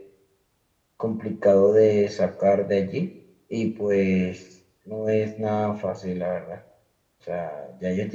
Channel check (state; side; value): identical; both; correlation 1.00